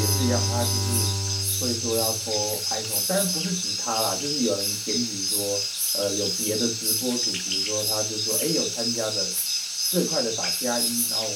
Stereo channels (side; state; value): both; identical; correlation 1.00